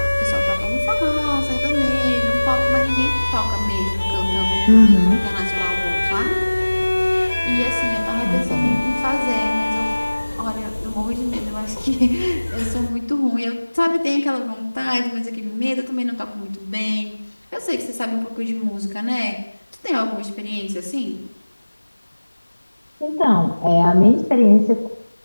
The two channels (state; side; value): inverted; both; correlation -1.00